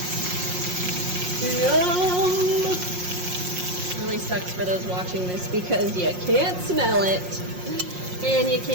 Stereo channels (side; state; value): left; late; 5.6 ms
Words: Yum! Really sucks for those watching this because you can't smell it and you